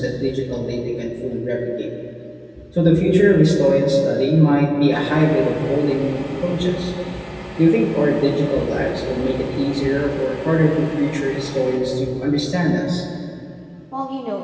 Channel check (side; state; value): both; identical; correlation 1.00